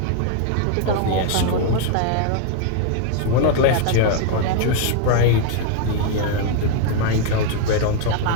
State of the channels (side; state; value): both; different; correlation 0.00